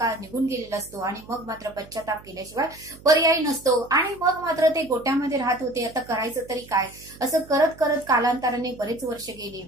निघून गेलेला असतो आणि मग मात्र पश्चाताप केल्याशिवाय पर्याय नसतो. आणि मग मात्र ते गोट्यामध्ये राहत होते. आता करायचं तरी काय, असं करत करत कालांतराने बरेच वर्ष गेली.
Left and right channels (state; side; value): noise; right; hum, 21 dB below the sound